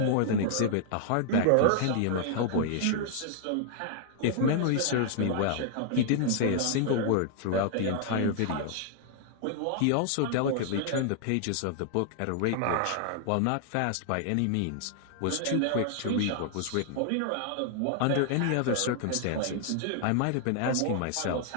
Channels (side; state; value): both; different; correlation 0.00